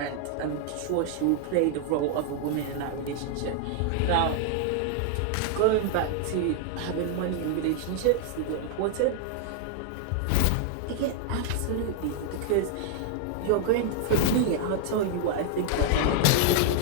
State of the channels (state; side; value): different; both; correlation -0.01